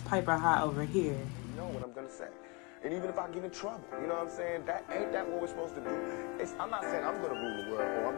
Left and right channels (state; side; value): quieter; right; 29.9 dB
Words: piper high over here. You know what I'm gonna say. And even if I get in trouble, you know what I'm saying? Ain't that what we're supposed to do? I'm not saying I'm gonna rule the world or I'm